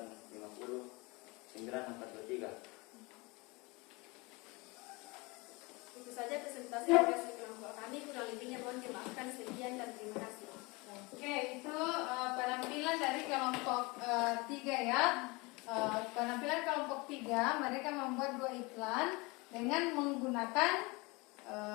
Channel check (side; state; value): right; quieter; 25.8 dB